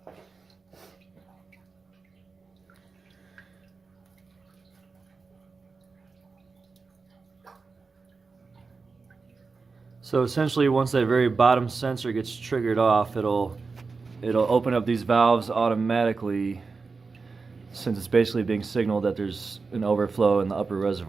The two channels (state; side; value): quieter; left; 4.4 dB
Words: essentially, once that very bottom sensor gets triggered off, it'll open up these valves automatically, since it's basically being signaled that there's an overflow in the upper